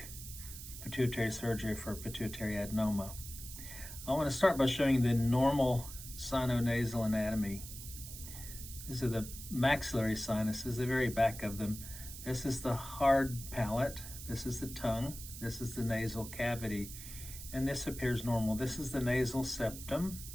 pituitary surgery for pituitary adenoma. I want to start by showing the normal sinonasal anatomy. These are the maxillary sinuses, the very back of them. This is the hard palate, this is the tongue, this is the nasal cavity, and this appears normal. This is the nasal septum,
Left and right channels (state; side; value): noise; right; hiss, 11 dB below the sound